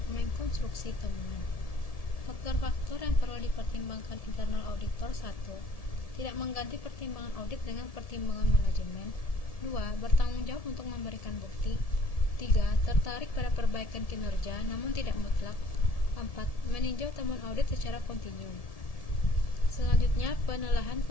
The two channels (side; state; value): right; late; 1.7 ms